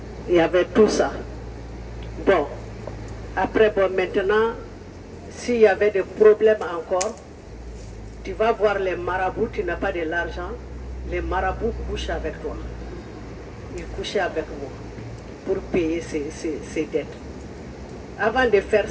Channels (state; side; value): identical; both; correlation 1.00